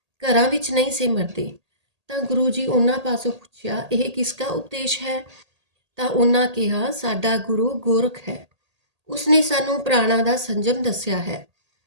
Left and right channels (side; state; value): left; late; 1.8 ms